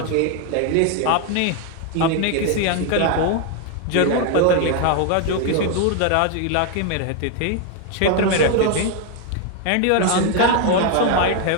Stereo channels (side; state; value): both; different; correlation 0.01